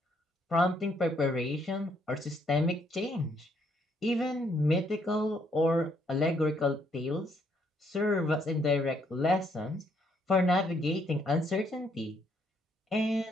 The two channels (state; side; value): normal; both; correlation 0.71